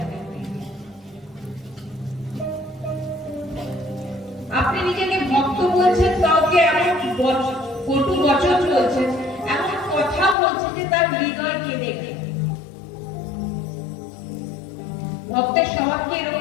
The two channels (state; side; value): drops out; right; at 10.4 s